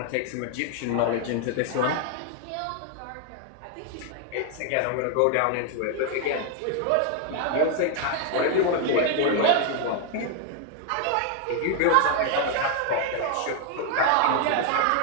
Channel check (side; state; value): both; different; correlation 0.00